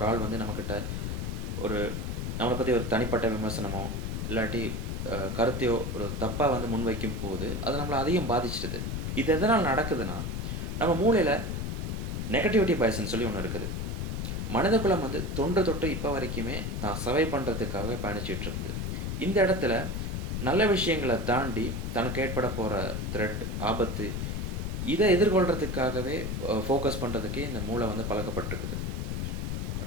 ஆள் வந்து நம்மகிட்ட ஒரு நம்மள பத்தி ஒரு தனிப்பட்ட விமர்சனமோ, இல்லாட்டி கருத்தையோ ஒரு தப்பா வந்து முன்வைக்கும்போது, அது நம்மள அதிகம் பாதிச்சிடுது. இது எதனால நடக்குதுன்னா, நம்ம மூளையில நெகட்டிவிட்டி பயஸ்ன்னு சொல்லி ஒண்ணு இருக்குது. மனிதகுலம் வந்து தொன்று தொட்டு இப்ப வரைக்குமே தான் சர்வை பண்றதுக்காகவே பயணிச்சுட்டு இருக்குது. இந்த இடத்துல நல்ல விஷயங்கள தாண்டி தனக்கு ஏற்பட போற த்ரெட், ஆபத்து இத எதிர்கொள்றதுக்காகவே ஃபோக்கஸ் பண்றதுக்கே இந்த மூளை வந்து பழக்கப்பட்டிருக்குது.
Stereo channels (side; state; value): left; noise; rumble, 2 dB below the sound